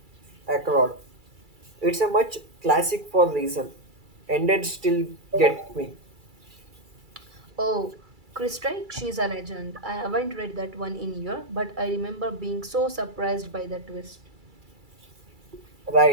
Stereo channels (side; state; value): left; late; 2.3 ms